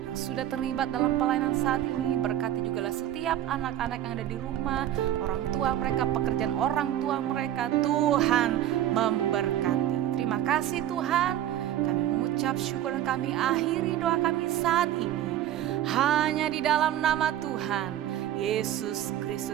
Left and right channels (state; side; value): quieter; left; 12.0 dB